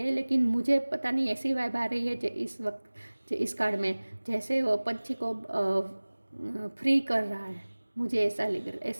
लेकिन मुझे पता नहीं ऐसी वाइब आ रही है जो इस वक्त, जो इस कार्ड में जैसे वो पंछी को फ्री कर रहा है, मुझे ऐसा लग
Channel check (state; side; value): inverted; both; correlation -1.00